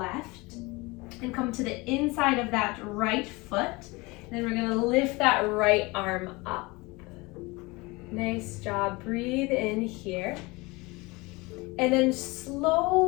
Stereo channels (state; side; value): quieter; right; 24.2 dB